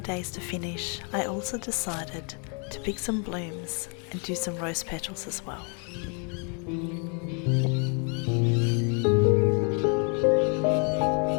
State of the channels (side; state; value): right; quieter; 37.7 dB